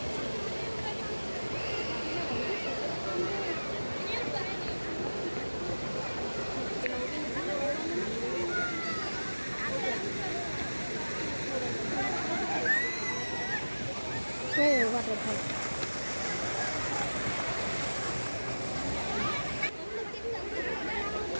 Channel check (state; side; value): inverted; both; correlation -1.00